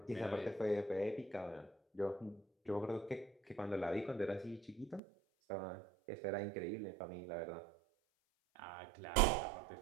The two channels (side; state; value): left; drops out; at 5.0 s